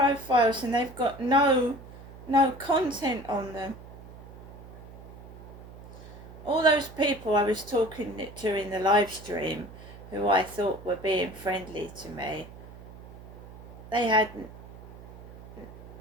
and they've got no content on them. All those people I was talking to in the live stream who I thought were being friendly to me, they had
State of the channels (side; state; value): right; noise; hum, 16 dB below the sound